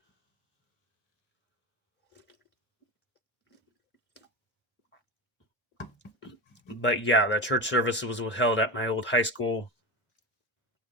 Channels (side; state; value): both; normal; correlation 0.22